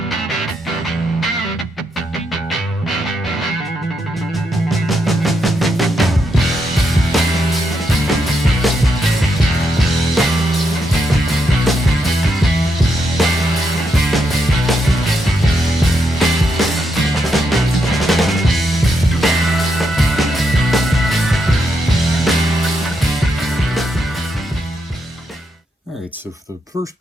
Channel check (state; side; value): normal; both; correlation 0.81